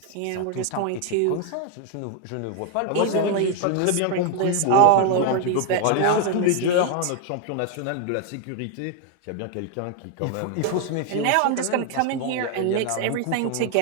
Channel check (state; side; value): different; both; correlation 0.00